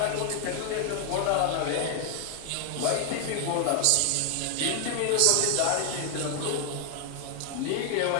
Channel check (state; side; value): different; both; correlation 0.00